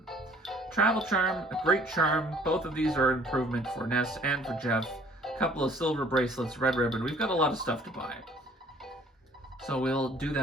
Travel charm, a great charm. Both of these are an improvement for Ness and for Jeff. A couple of silver bracelets, red ribbon. We've got a lot of stuff to buy. So we'll do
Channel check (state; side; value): normal; both; correlation 0.56